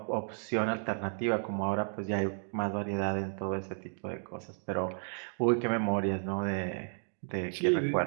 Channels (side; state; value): left; silent; 56 dB below the other